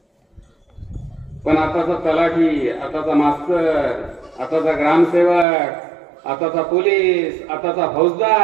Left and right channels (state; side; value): drops out; left; at 5.5 s